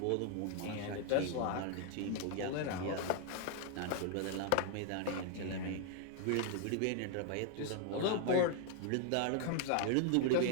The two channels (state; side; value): different; both; correlation 0.00